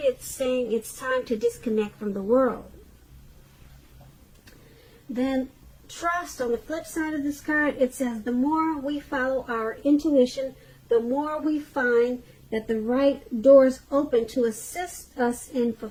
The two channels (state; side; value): identical; both; correlation 1.00